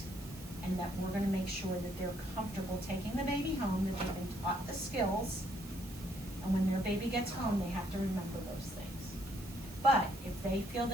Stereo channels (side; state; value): right; noise; hiss, 19 dB below the sound